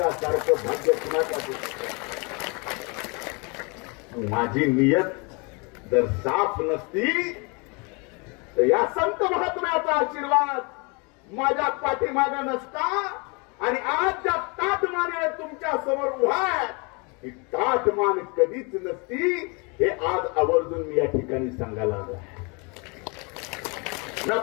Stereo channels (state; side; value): quieter; right; 31.1 dB